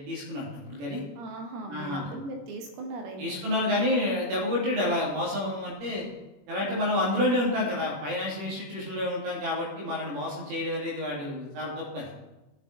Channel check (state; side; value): late; left; 21 ms